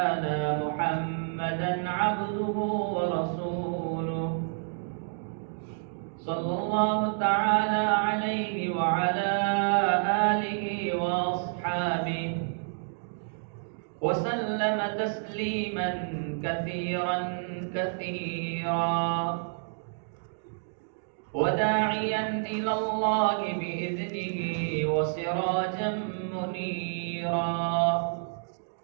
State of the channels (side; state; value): left; silent; digital silence